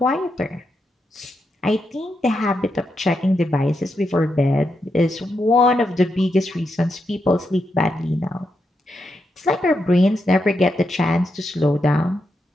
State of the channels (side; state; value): both; normal; correlation 0.84